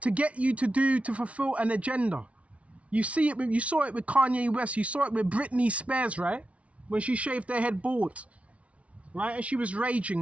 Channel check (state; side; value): late; left; 0.064 ms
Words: get you to fulfill an agenda. You saw it with Kanye West. You saw it with Britney Spears, right? When she shaved her head bald, right? And she was